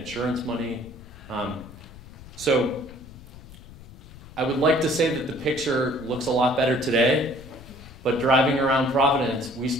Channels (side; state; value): left; noise; rumble, 18 dB below the sound